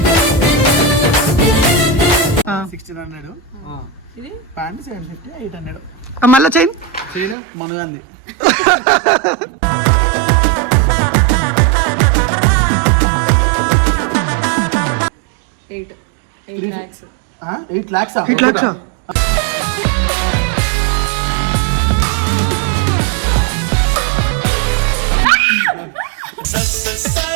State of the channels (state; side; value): drops out; left; at 7.4 s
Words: ప్యాంట్ 750 800 మళ్ళీ చైన్ మనగాంది. $8 lakhs.